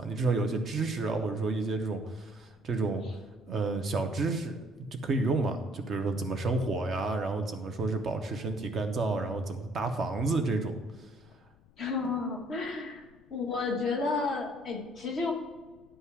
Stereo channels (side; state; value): left; noise; rumble, 28 dB below the sound